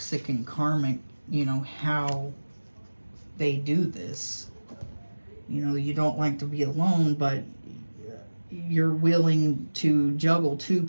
and karmic, you know, how they do this. You know, you don't like to be alone, but you're willing to juggle two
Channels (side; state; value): both; inverted; correlation -1.00